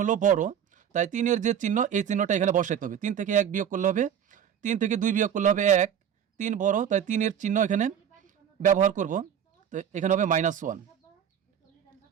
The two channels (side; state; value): left; quieter; 8.9 dB